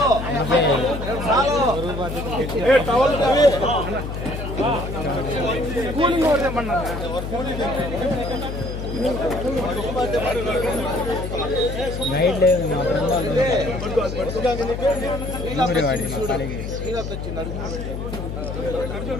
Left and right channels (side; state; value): left; noise; hum, 6 dB below the sound